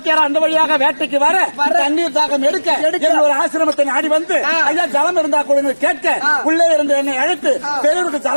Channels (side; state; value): both; inverted; correlation -1.00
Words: அந்த வழியாக வேட்டைக்கு வர தண்ணீர் தாக்கம் எடுக்க ஒரு ஆசிரமத்தை நாடி வந்து ஐயா ஜலம் இருந்தா கூட கேட்க உள்ளே இருந்து என்னை அழைத்து பெரியவருக்கு